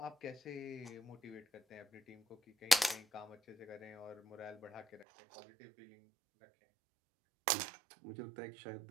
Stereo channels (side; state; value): left; drops out; at 5.1 s